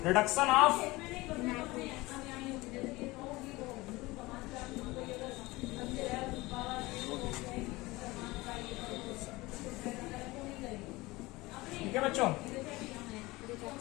रिडक्शन ऑफ ठीक है बच्चों।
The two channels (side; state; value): right; quieter; 21.0 dB